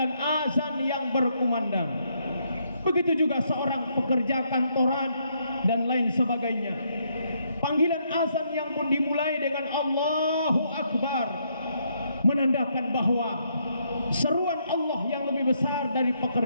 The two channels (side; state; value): both; inverted; correlation -0.74